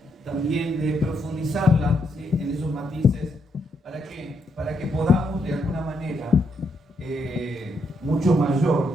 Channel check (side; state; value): both; normal; correlation 0.77